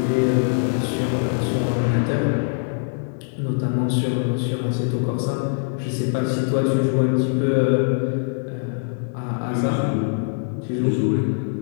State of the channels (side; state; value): right; silent; digital silence